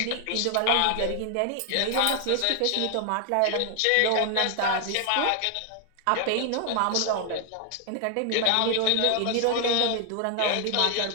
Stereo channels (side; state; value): both; different; correlation 0.00